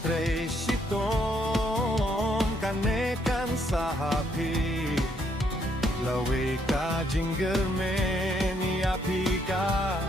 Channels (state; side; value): normal; both; correlation 0.72